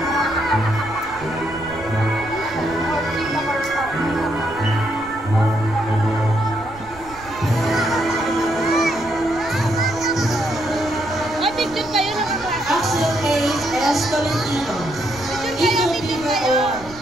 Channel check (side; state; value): right; noise; rumble, 19 dB below the sound